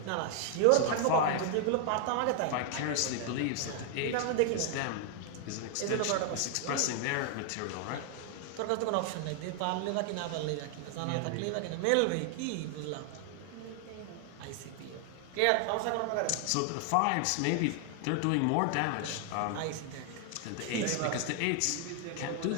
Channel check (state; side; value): different; both; correlation 0.00